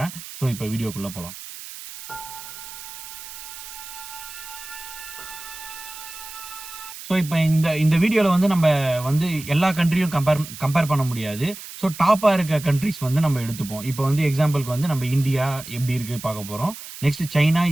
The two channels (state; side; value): noise; right; hiss, 13 dB below the sound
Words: ஸோ இப்ப வீடியோக்குள்ள போலாம். ஸோ, இப்ப இந்த இந்த வீடியோல வந்து நம்ப வந்து எல்லா கண்ட்ரியும் கம்பேர் கம்பேர் பண்ண முடியாது. ஸோ, டாப்பா இருக்க கண்ட்ரீஸ் வந்து நம்ம எடுத்துப்போம். இப்ப வந்து எக்ஸாம்பிள்க்கு வந்து நம்ம இந்தியா எப்படி இருக்கு பார்க்க போறோம். Next China,